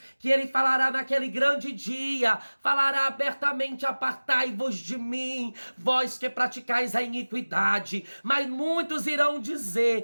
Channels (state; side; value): inverted; both; correlation -1.00